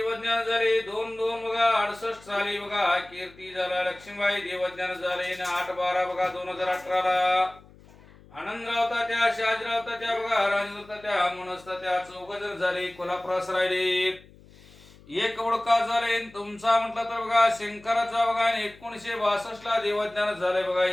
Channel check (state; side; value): noise; left; hum, 24 dB below the sound